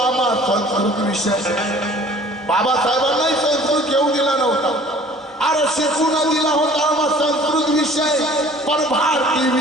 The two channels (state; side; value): normal; both; correlation 0.50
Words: आम्हा संस्कृत विषय बाबासाहेबांनाही संस्कृत घेऊ दिला नव्हता अरे शिकून दिला होता आम्हा संस्कृत विषय पण भारतीय